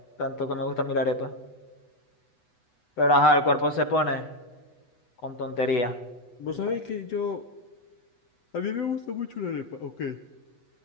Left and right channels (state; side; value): late; right; 8.1 ms